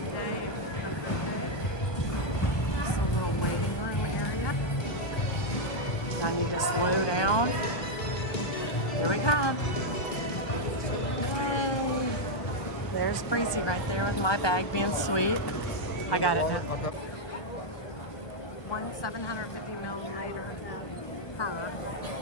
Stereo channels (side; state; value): right; late; 1.2 ms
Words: day. Just a little waiting room area. I need to slow down. Here we come. Yay. There's Breezy right there with my bag being sweet. I got it now. 750 milliliter per